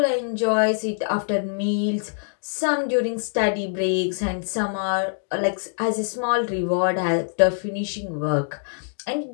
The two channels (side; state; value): right; silent; digital silence